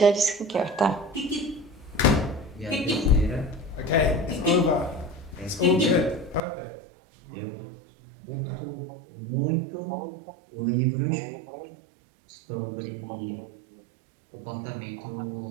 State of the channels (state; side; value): drops out; left; at 6.4 s